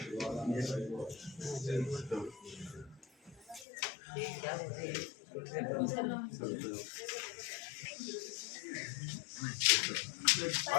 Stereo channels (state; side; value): drops out; right; at 3.7 s